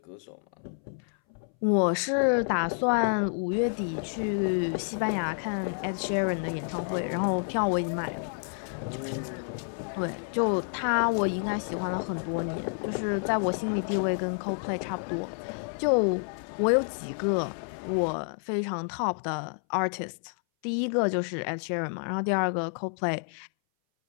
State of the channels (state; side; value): silent; right; 59 dB below the other